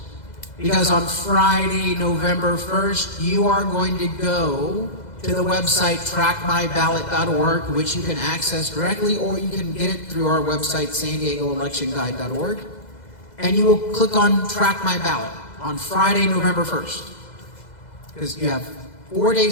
Because on Friday, November 1st, you are going to go to the website trackmyballot.org, which you can access directly, or you can get it through our website, san-diego-electionguide.org, and you will click on Track My Ballot on Friday, November 1st, because you have 4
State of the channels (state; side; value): late; right; 2.0 ms